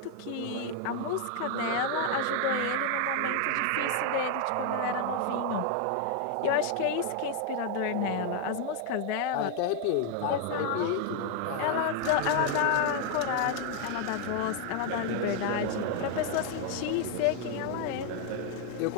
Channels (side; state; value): both; different; correlation 0.00